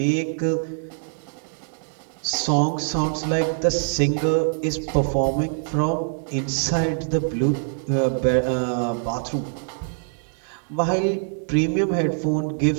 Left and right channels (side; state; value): left; silent; digital silence